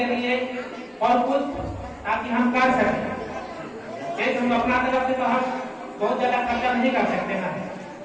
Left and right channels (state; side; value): identical; both; correlation 1.00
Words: लिए और कुछ ताकि हम कर सकें। हम अपना तरफ से तो हम बहुत ज्यादा खर्चा नहीं कर सकते ना,